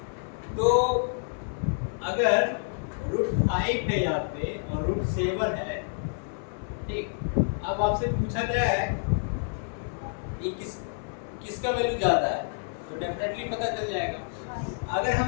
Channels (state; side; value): silent; right; digital silence